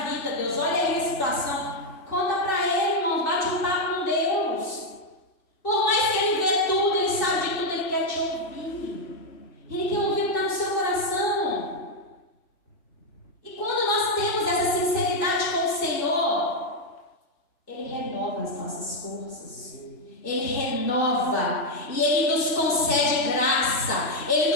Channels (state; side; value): late; right; 2.6 ms